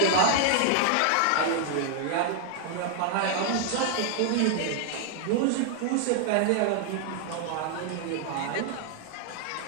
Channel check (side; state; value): both; different; correlation 0.00